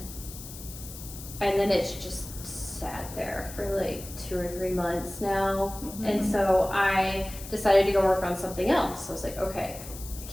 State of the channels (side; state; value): left; noise; hiss, 13 dB below the sound